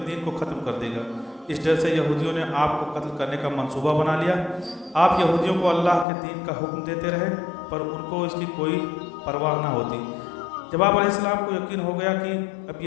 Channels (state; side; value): drops out; right; at 6.1 s